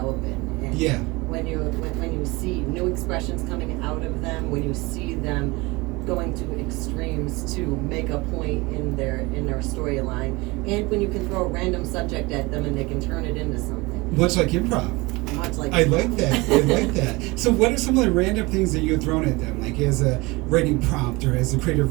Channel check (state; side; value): quieter; left; 23.7 dB